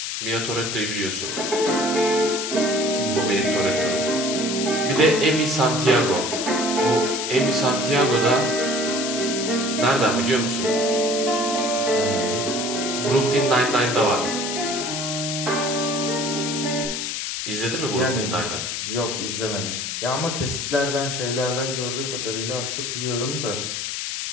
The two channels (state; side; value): noise; left; hiss, 3 dB below the sound